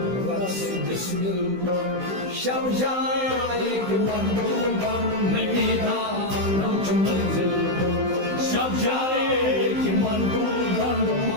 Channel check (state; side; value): late; left; 16 ms